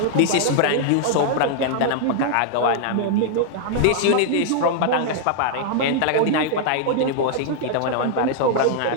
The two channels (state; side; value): different; both; correlation 0.00